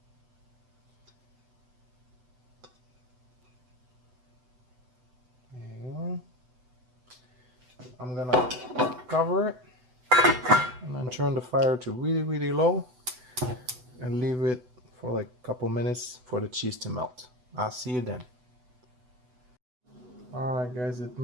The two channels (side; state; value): left; late; 8.0 ms